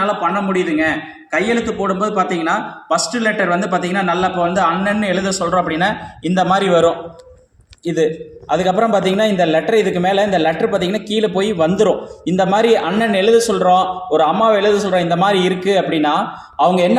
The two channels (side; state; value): both; identical; correlation 1.00